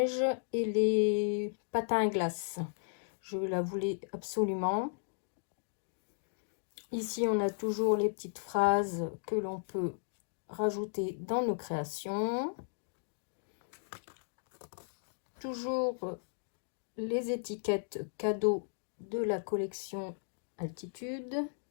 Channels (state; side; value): silent; right; digital silence